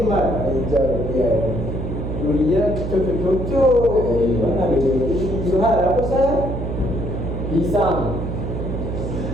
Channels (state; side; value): noise; right; hum, 4 dB below the sound